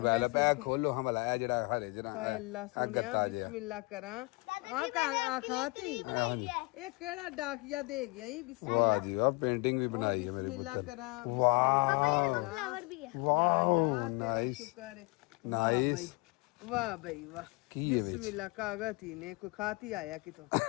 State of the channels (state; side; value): quieter; right; 27.2 dB